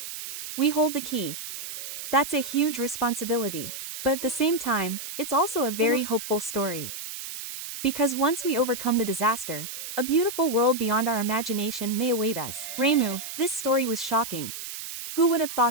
We hold the key. That's a huge responsibility. But at the same time, it's also a very hopeful story. Because once we overcome the disaster, a beautiful world beyond our imagination may await us. Reimu, this story was shocking. Who would have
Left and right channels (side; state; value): right; noise; hiss, 9 dB below the sound